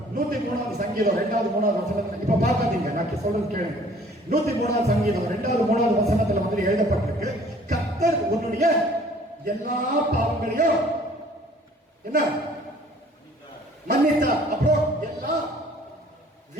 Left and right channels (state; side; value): normal; both; correlation 0.54